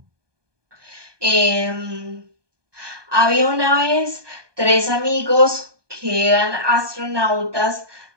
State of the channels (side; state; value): left; late; 1.2 ms